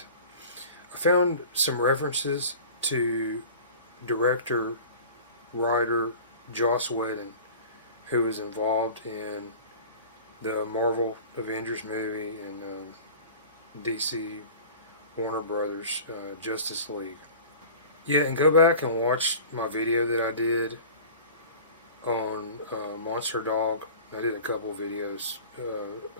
I found some references to director, writer Joss Whedon, who was involved in the Marvel Avengers movie and DC Warner Brothers Justice League. Yeah, and go back and watch my video that I did on Monster Dog. I did a couple videos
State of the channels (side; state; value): both; inverted; correlation -0.40